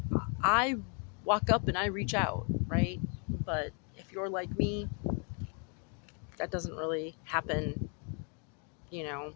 I walk up and I reach out, right? But if you're like me, that doesn't really happen,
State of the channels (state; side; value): quieter; right; 37.9 dB